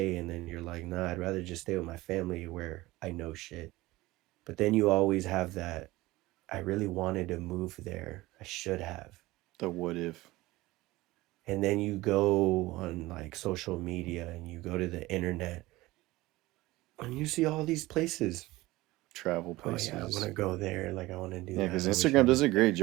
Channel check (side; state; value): left; quieter; 19.1 dB